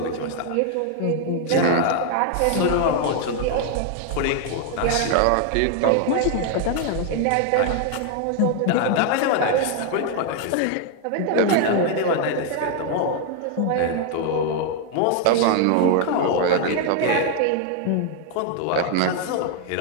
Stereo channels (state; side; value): different; both; correlation 0.00